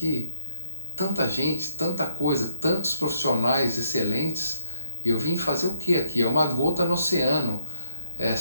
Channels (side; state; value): both; inverted; correlation -0.60